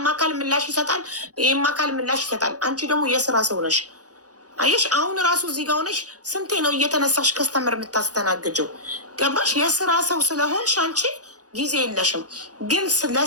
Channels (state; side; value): late; left; 0.67 ms